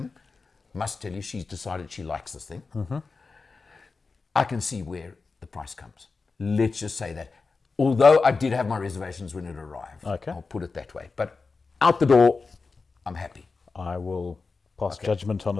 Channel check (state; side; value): quieter; right; 4.3 dB